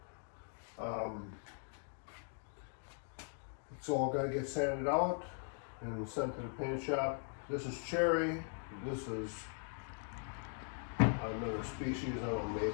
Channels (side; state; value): right; silent; 51 dB below the other